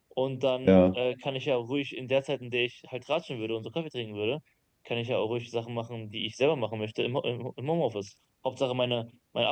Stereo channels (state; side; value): identical; both; correlation 1.00